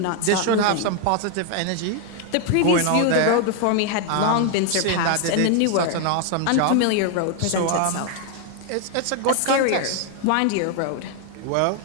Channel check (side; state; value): both; different; correlation 0.00